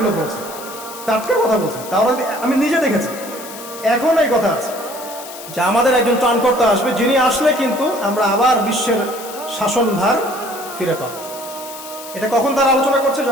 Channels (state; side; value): noise; left; hiss, 13 dB below the sound